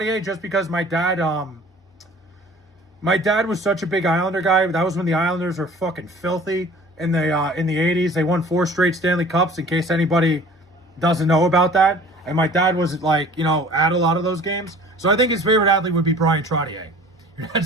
just because my dad was such a big Islander guy. That was when the Islanders were fucking filthy. In the 80s, they won 4 straight Stanley Cups, in case anybody doesn't know about that. And my dad was, like, you know, at a lot of those games. So I think his favorite athlete would be Brian Trottier.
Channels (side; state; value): both; normal; correlation 0.47